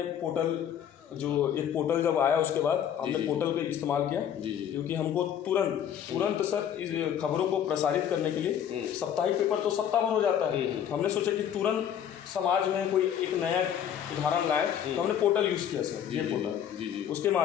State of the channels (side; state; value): right; quieter; 9.4 dB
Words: पोर्टल, जो एक पोर्टल जब आया उसके बाद हमने पोर्टल का इस्तेमाल किया, क्योंकि हमको तुरंत सर इस खबरों को प्रसारित करने के लिए साप्ताहिक पेपर तो सप्ताह भर हो जाता है। हमने सोचा कि तुरंत समाज में कोई एक नया उदाहरण लाए, तो हमने पोर्टल यूज़ किया सर, ये पोर्टल। उसके